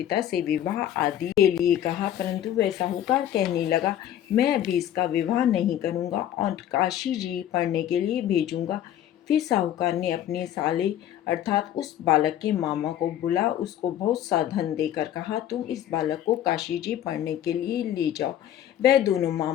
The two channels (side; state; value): right; quieter; 11.3 dB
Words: से विवाह आदि के लिए कहा, परंतु वह साहूकार कहने लगा, मैं अभी इसका विवाह नहीं करूँगा और काशी जी पढ़ने के लिए भेजूँगा। फिर साहूकार ने अपने साले अर्थात उस बालक के मामा को बुला उसको बहुत सा धन देकर कहा, तुम इस बालक को काशी जी पढ़ने के लिए ले जाओ। वह दोनों